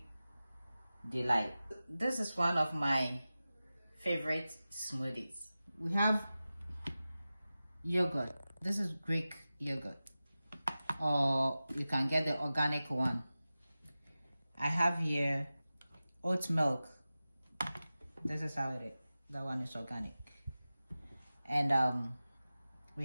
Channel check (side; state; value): both; inverted; correlation -0.96